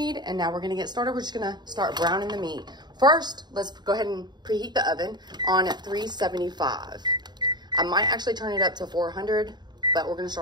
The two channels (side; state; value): left; late; 0.21 ms